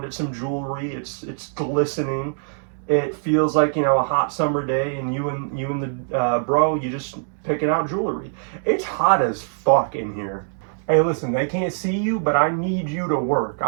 at some jewelry. It's glistening. It feels like, you know, a hot summer day, and you and the bro, you just picking out jewelry. It's hot as fuck in here. Hey, listen, they can't see you, but I need you to work.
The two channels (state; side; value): silent; left; digital silence